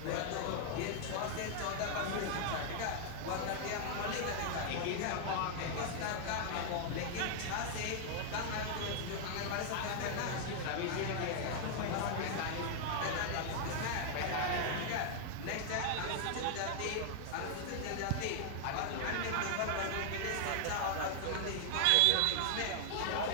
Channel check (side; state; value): both; different; correlation 0.00